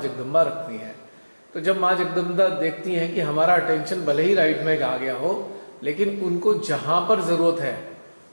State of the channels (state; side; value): inverted; both; correlation -1.00